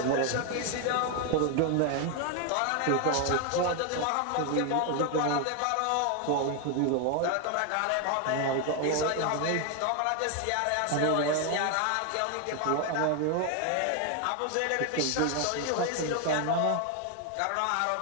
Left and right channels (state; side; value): different; both; correlation 0.01